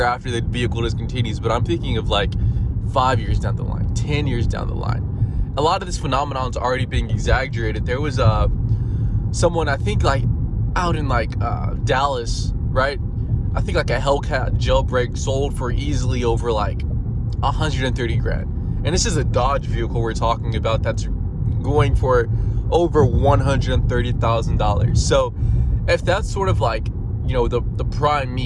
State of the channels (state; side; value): identical; both; correlation 1.00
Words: after the vehicle discontinues. But I'm thinking of 5 years down the line, 10 years down the line. A lot of this phenomenon is already being exaggerated. There was someone, I think out in Dallas, right? I think a Hellcat jailbreak sold for easily over 130 grand. And this is a Dodge vehicle we're talking about that's going for over $130,000. So if that's sort of the prime